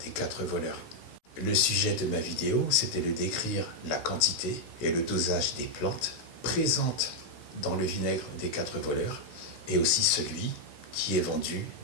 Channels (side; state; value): right; late; 16 ms